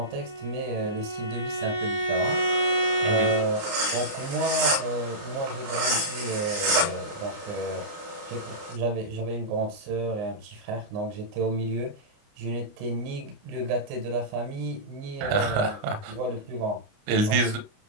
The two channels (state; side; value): late; left; 29 ms